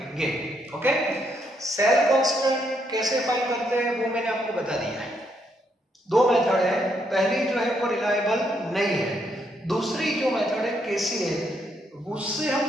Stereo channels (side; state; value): both; normal; correlation 0.75